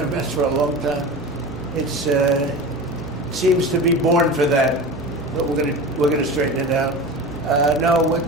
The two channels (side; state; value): both; normal; correlation 0.31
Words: mess for a long time. It's seems to be born for that, but we're gonna straighten it out. No,